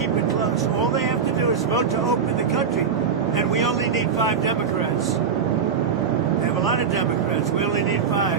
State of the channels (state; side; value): quieter; left; 6.5 dB